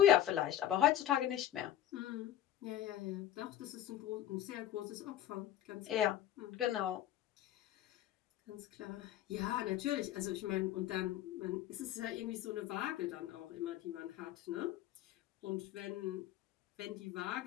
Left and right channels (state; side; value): quieter; right; 12.1 dB